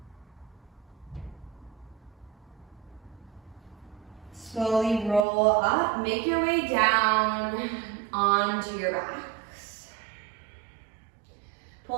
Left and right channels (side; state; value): left; drops out; at 5.2 s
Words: Slowly roll up, make your way down onto your backs.